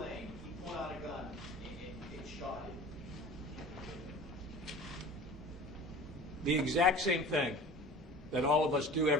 he pulled out a gun and shot him. The exact same thing that all of us do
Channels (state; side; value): normal; both; correlation 0.40